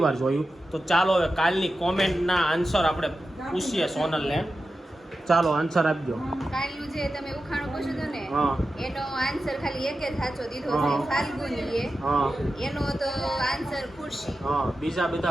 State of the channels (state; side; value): normal; both; correlation 0.92